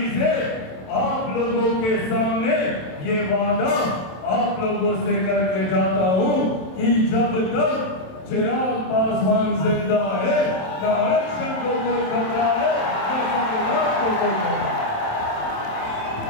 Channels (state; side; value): late; right; 27 ms